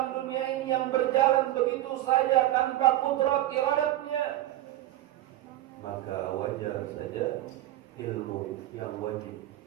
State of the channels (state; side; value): quieter; left; 14.8 dB